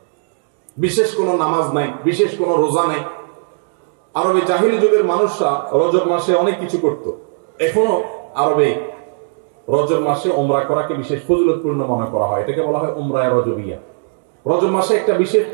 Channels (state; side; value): silent; left; digital silence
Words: বিশেষ কোন নামাজ নাই, বিশেষ কোন রোজা নাই। আরবে জাহিলি যুগের মানুষরা রজব মাসে অনেক কিছু করত। এখনো আরবে রজব মাসে উমরা করাকে বিশেষ ফজিলতপূর্ণ মনে করা হয়। এটাকে বলা হয় উমরায়ে রজবিয়া। রজব মাসে একটা বিশেষ